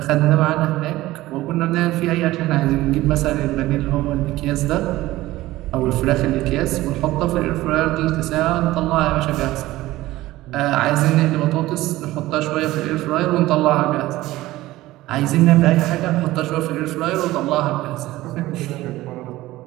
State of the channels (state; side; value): quieter; left; 17.1 dB